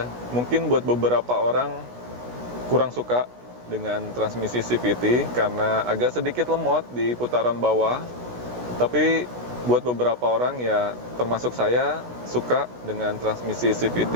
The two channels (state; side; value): late; left; 16 ms